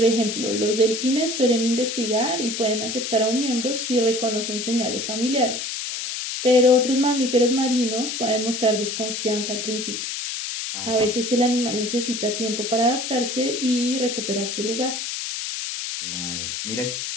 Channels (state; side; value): noise; left; hiss, 4 dB below the sound